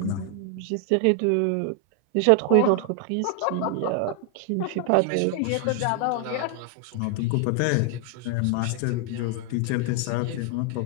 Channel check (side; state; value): both; different; correlation 0.00